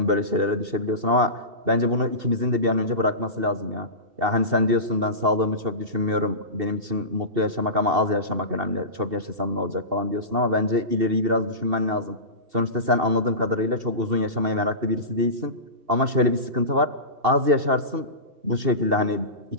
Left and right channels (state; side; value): late; left; 2.7 ms